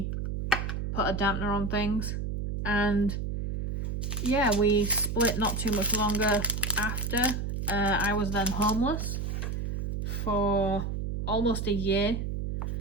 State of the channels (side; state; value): right; noise; hum, 3 dB below the sound